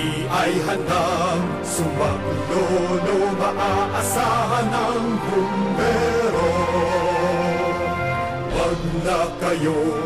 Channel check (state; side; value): identical; both; correlation 1.00